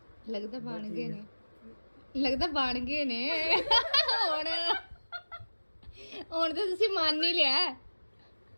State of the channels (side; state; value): both; inverted; correlation -1.00